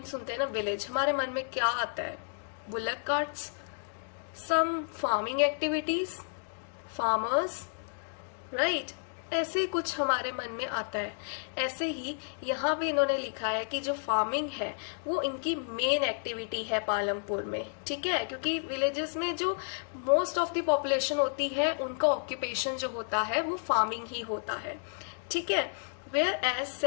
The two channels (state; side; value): silent; right; digital silence